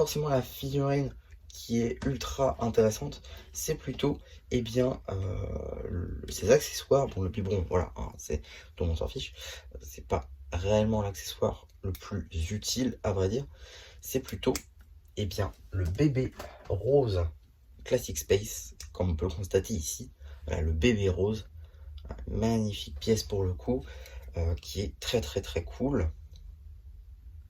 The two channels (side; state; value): both; identical; correlation 1.00